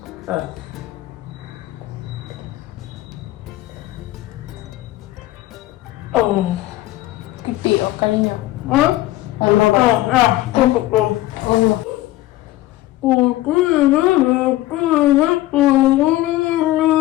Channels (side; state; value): right; quieter; 16.4 dB